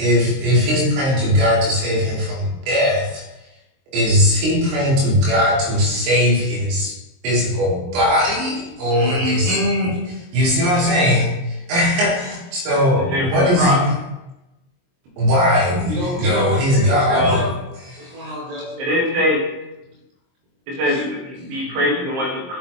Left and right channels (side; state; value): left; late; 23 ms